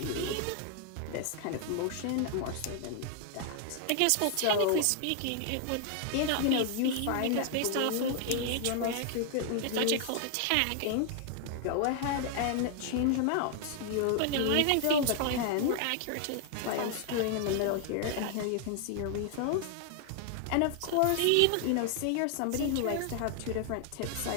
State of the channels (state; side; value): different; both; correlation 0.00